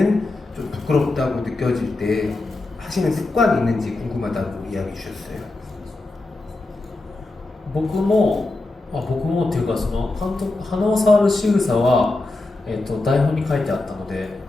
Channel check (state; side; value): quieter; right; 3.0 dB